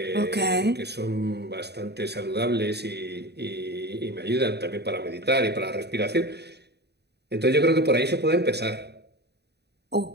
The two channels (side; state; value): left; late; 0.48 ms